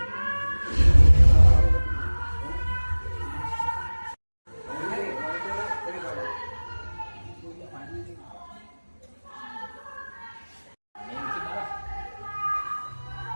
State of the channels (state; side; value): inverted; both; correlation -1.00